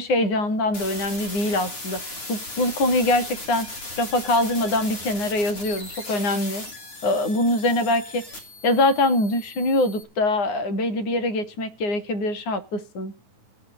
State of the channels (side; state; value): right; late; 9.5 ms